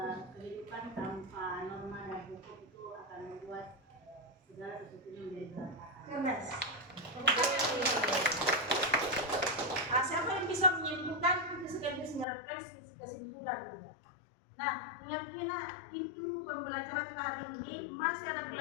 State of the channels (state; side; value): drops out; right; at 12.2 s